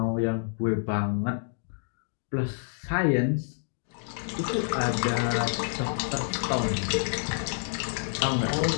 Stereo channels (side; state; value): right; silent; digital silence